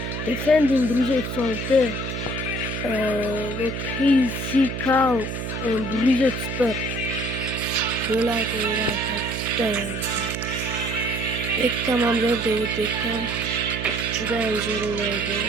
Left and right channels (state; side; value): noise; right; hum, 5 dB below the sound